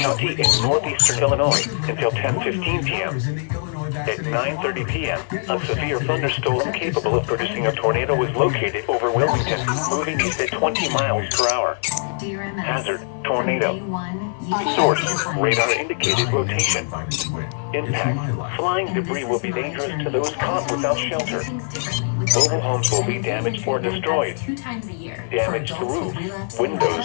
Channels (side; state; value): right; silent; digital silence